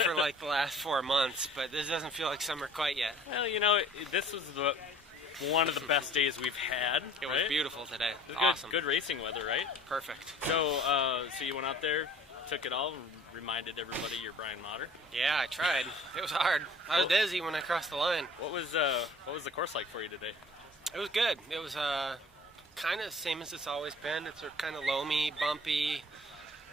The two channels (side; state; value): both; normal; correlation 0.49